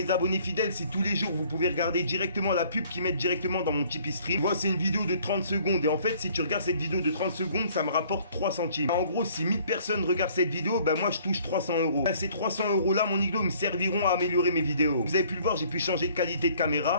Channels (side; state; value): both; inverted; correlation -0.58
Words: abonnés fidèles si tous les jours vous pouvez regarder directement la pub qu'ils mettent directement dans mon Tipeee Stream. Tu vois c'est une vidéo de 30 secondes et en fait si tu regardes cette vidéo de 30 secondes ça me rapporte 3 centimes. En gros si 1000 personnes regardent cette vidéo, bah moi je touche 300 euros. Ces 300 euros là mon iglo me serviront à améliorer mes vidéos. Vous avez pu le voir, j'ai pu changer de qualité de caméra.